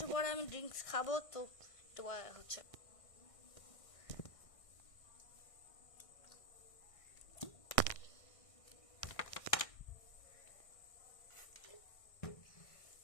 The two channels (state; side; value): late; right; 1.6 ms